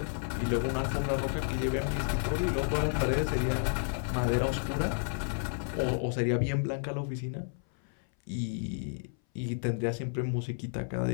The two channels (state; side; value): silent; right; 57 dB below the other